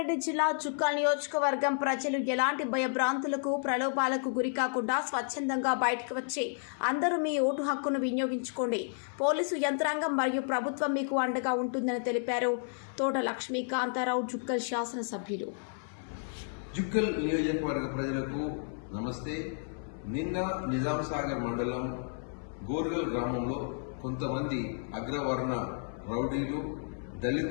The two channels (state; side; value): silent; right; 55 dB below the other